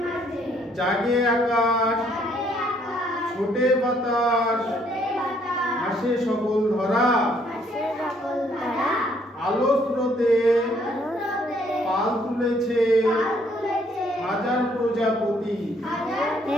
জাগে আকাশ ছোটে বাতাস হাসে সকল ধরা আলো স্রোতে পাল তুলেছে হাজার প্রজাপতি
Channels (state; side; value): normal; both; correlation 0.66